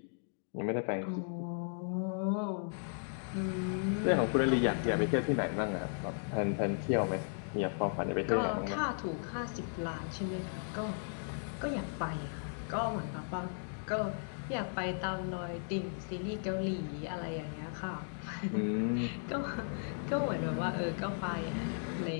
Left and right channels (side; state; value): right; silent; digital silence